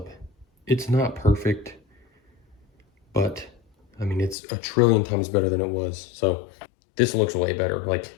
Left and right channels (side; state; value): right; drops out; at 4.4 s